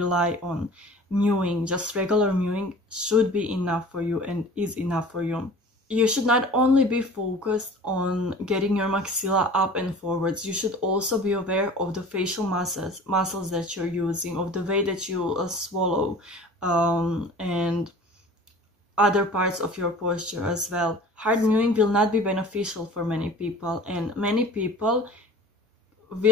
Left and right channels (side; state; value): both; normal; correlation 0.42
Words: on. Mewing, just regular mewing, should be enough for you and is enough for you. You should not only be focused on getting your maxilla up and forwards, you should also be aware of the facial muscles that you're using, of the way that you swallow, and other parts of your posture as well. Hard mewing will not be beneficial for many people, and many people